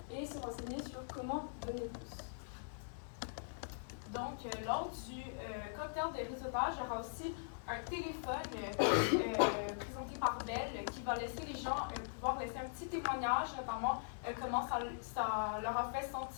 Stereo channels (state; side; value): silent; right; 50 dB below the other